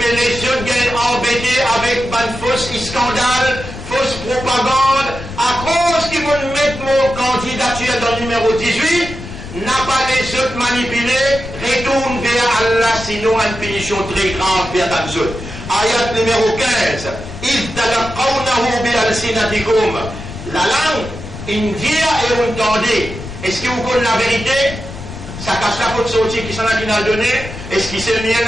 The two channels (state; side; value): noise; left; rumble, 11 dB below the sound